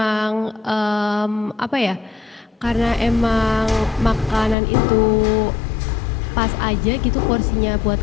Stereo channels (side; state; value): right; drops out; at 4.5 s